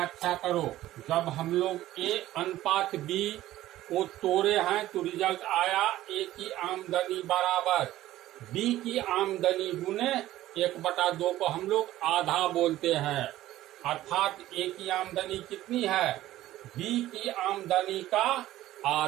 करो। जब हम लोग ए अनुपात बी को तोड़े हैं तो रिजल्ट आया ए की आमदनी बराबर बी की आमदनी गुने 1/2 को हम लोग आधा बोलते हैं, अर्थात ए की आमदनी कितनी है? बी की आमदनी का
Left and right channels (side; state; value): left; quieter; 14.8 dB